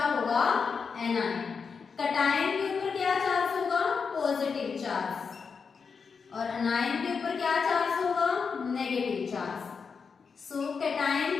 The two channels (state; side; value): quieter; right; 5.6 dB